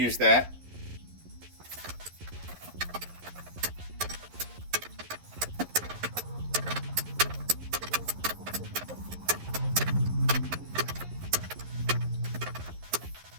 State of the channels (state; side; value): late; left; 11 ms